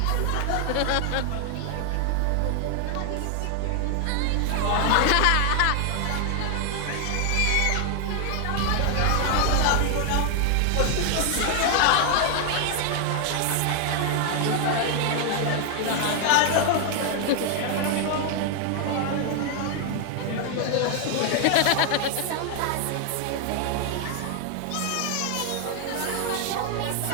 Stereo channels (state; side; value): different; both; correlation 0.00